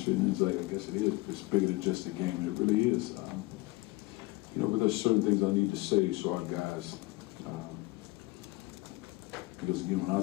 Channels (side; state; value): right; quieter; 21.7 dB